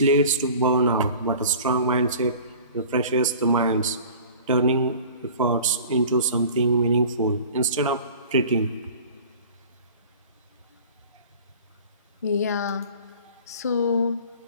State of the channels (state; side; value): inverted; both; correlation -0.43